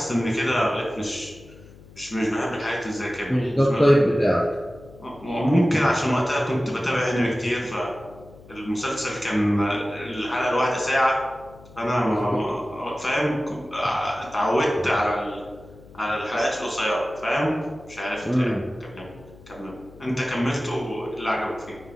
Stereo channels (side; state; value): left; noise; hum, 21 dB below the sound